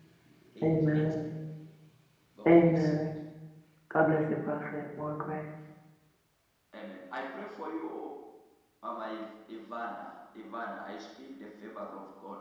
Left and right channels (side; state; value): both; identical; correlation 1.00